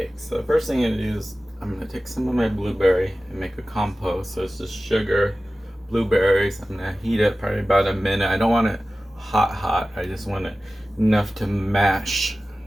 So the first thing I'm gonna do is I'm gonna take some of my blueberry and make a compote. So it's just sugar, blueberries. I'm gonna heat it probably about a minute. I don't want it hot. I just want it enough to mash.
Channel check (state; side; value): normal; both; correlation 0.96